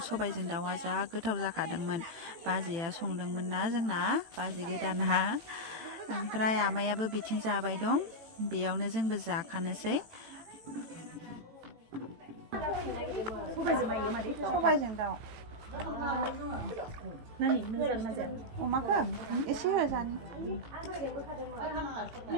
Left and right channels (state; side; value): late; left; 18 ms